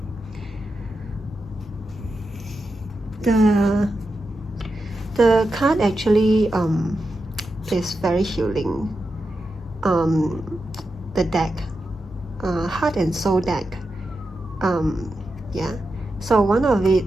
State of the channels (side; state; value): both; normal; correlation 0.89